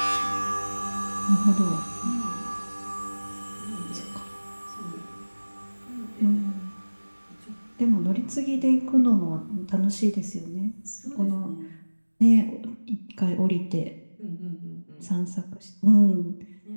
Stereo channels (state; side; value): inverted; both; correlation -1.00